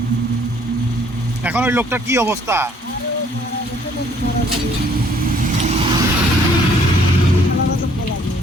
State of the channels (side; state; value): both; normal; correlation 0.61